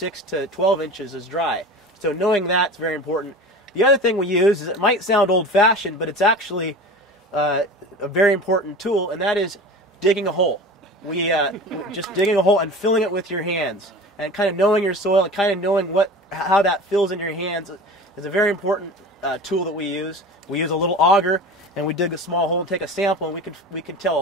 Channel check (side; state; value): both; normal; correlation 0.35